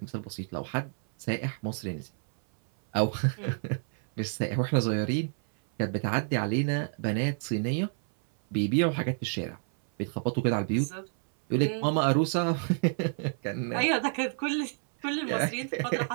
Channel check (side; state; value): left; silent; 59 dB below the other